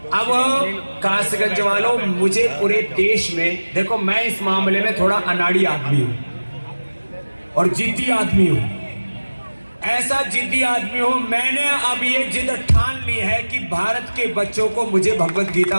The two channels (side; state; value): both; inverted; correlation -1.00